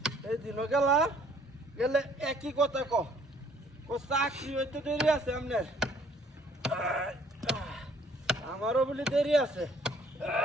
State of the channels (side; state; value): both; normal; correlation 0.60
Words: এই দিন গেলা গেলে একই কথা ক চাকরি হইতে দেরি আছে আপনার, আমারও বলি দেরি আছে।